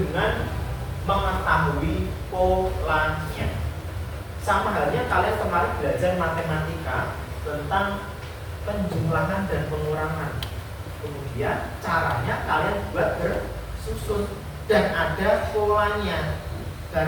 mengetahui polanya. Sama halnya kalian kemarin belajar matematika tentang penjumlahan dan pengurangan. Kemudian caranya kalian buat bersusun dan ada polanya.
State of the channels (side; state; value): both; identical; correlation 1.00